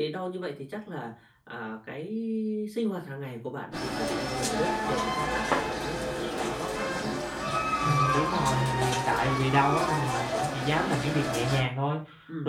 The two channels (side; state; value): both; identical; correlation 1.00